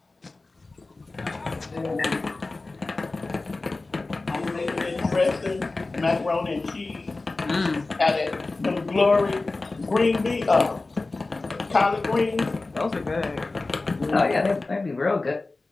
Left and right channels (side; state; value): right; quieter; 3.4 dB